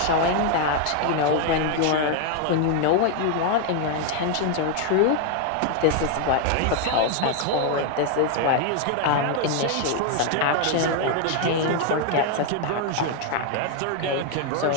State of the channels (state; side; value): different; both; correlation 0.00